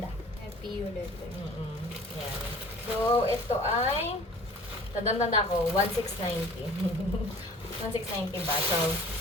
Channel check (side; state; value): both; normal; correlation 0.47